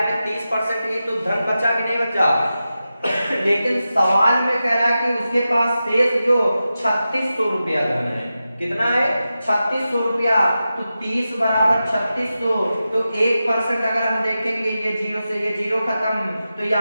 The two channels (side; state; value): both; inverted; correlation -0.92